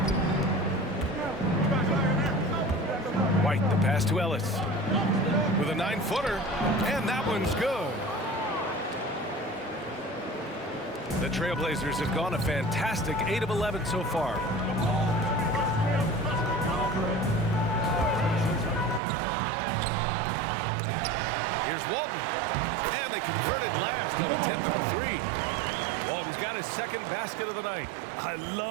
White, the pass to Ellis. With a 9-footer, and that one's good. The Trailblazers have gone a fantastic 8 of 11 so far. Here's Walton, and they converted last on attempt number 3. Walton's got his second basket of the night. I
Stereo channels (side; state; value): left; drops out; at 19.0 s